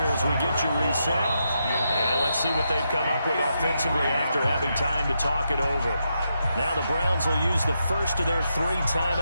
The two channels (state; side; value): inverted; both; correlation -0.83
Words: as we get you reset. And let's see what they've come up with offensively after having time to talk it over. Now the Browns will use the first of their 3